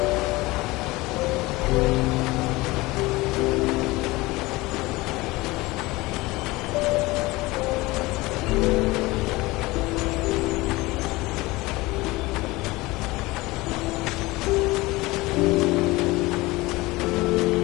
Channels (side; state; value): right; quieter; 21.2 dB